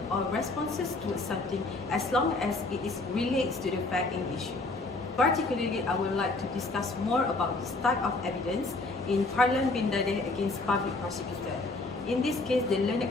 or responses towards something as long as it relates to the fact in issue. Particularly, I would like to discuss more about this type of evidence in PARLAN bin DADEH against Public Prosecutor. In this case, the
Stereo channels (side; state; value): right; quieter; 3.2 dB